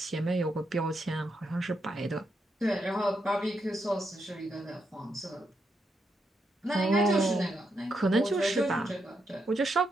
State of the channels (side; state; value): both; normal; correlation 0.81